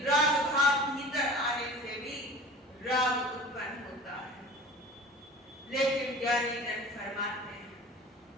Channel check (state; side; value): normal; both; correlation 0.40